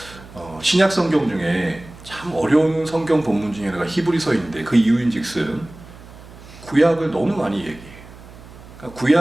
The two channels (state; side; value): noise; right; hum, 19 dB below the sound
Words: 신약 성경 중에 참 어려운 성경 본문 중에 하나가 히브리서인데 그 이유인즉슨 구약을 너무 많이 얘기해요. 그러니까